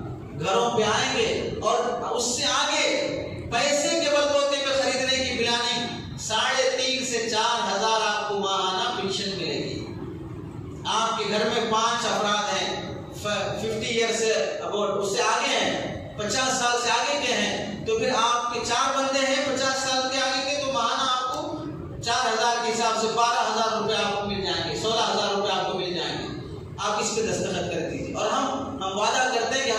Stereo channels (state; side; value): identical; both; correlation 1.00